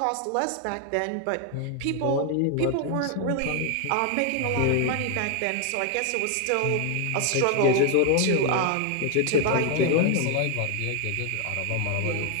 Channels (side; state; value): both; different; correlation 0.01